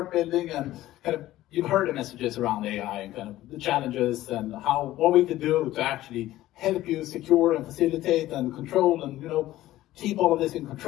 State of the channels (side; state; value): right; quieter; 15.2 dB